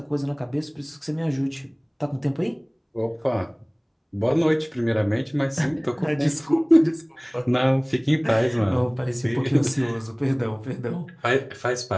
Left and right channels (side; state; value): both; identical; correlation 1.00